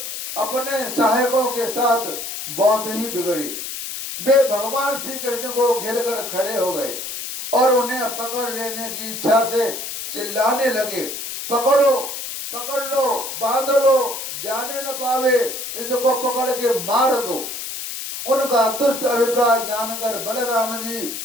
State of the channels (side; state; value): left; noise; hiss, 7 dB below the sound